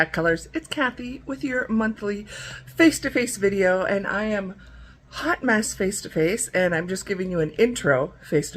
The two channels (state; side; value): identical; both; correlation 1.00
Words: Colors. It's Kathy with your monthly face-to-face video, and I am hot mess face-to-face, and I'm just giving you an intro